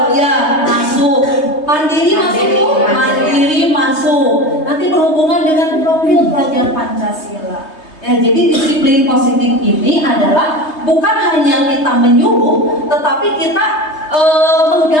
ya masuk, mandiri masuk Bu, mandiri masuk. Nanti berhubungan dengan profil pelajar Pancasila. Ya, jadi disiplin positif ini adalah bukan hanya kita menyuruh, tetapi kita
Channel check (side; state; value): right; late; 3.2 ms